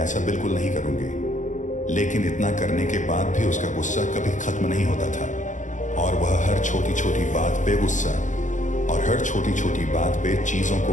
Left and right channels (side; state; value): right; late; 0.36 ms